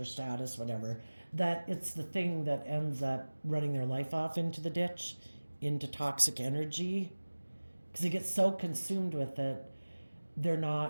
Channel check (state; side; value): inverted; both; correlation -1.00